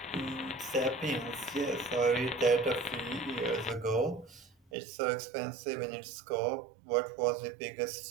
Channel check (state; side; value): drops out; left; at 4.5 s